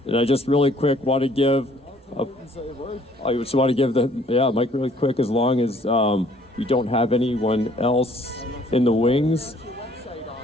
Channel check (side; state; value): both; normal; correlation 0.60